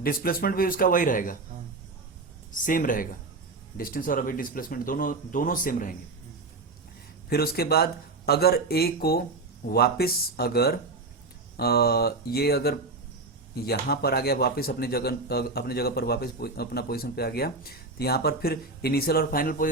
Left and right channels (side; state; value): left; quieter; 3.6 dB